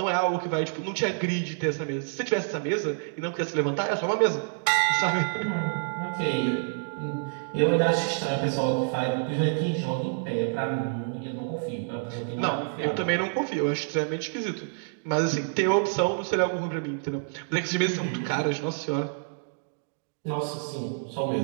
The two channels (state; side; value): silent; left; digital silence